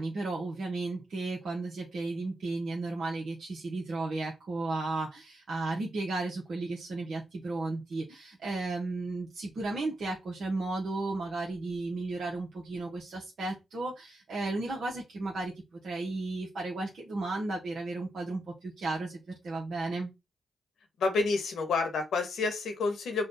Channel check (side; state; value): both; normal; correlation 0.82